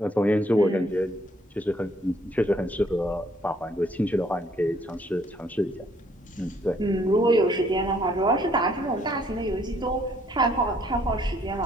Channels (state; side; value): normal; both; correlation 0.65